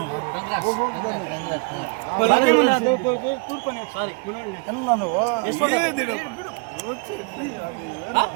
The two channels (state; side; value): quieter; left; 33.3 dB